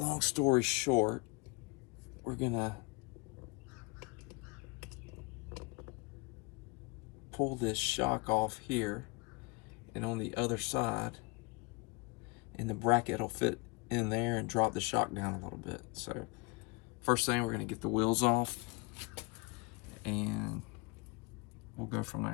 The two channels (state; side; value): quieter; right; 29.4 dB